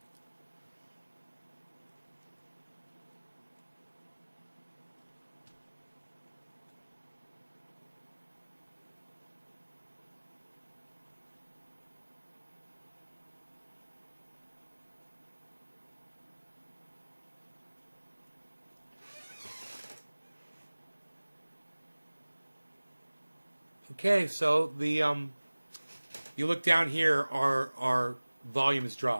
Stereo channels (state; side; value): inverted; both; correlation -1.00